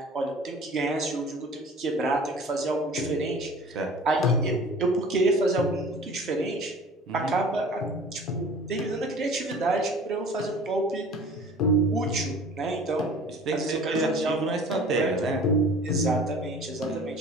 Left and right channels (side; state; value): both; normal; correlation 0.45